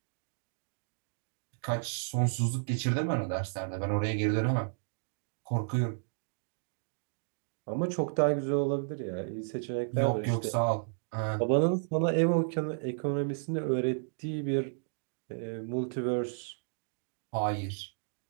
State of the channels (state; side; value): silent; left; digital silence